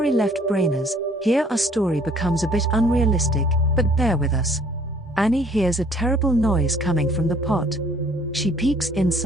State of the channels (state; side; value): normal; both; correlation 0.58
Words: left brainers, here our story becomes a bit unrealistic, but bear with us. Annie hears a terrible noise coming from the pot. She peeks